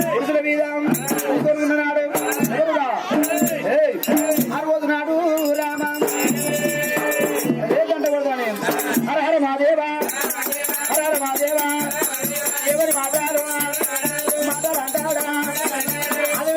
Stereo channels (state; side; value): identical; both; correlation 1.00